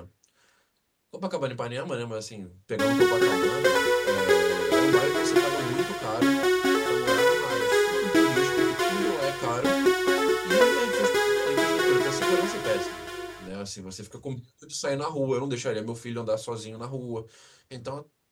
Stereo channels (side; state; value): both; identical; correlation 1.00